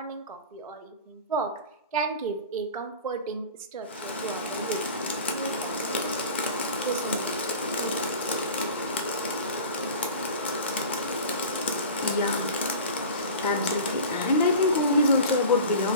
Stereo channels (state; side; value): inverted; both; correlation -0.36